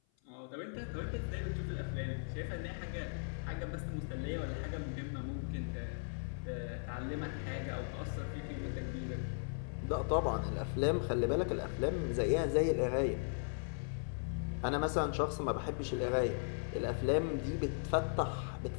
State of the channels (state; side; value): silent; right; 53 dB below the other